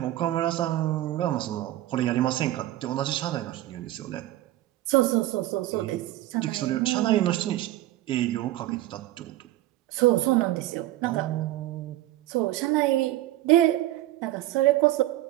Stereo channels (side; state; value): left; quieter; 15.3 dB